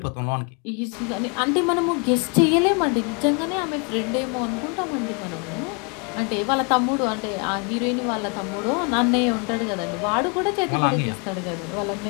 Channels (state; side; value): quieter; right; 34.0 dB